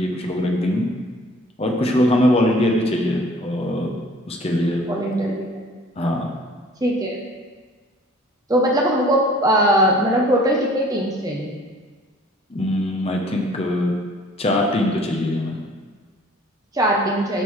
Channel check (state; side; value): normal; both; correlation 0.51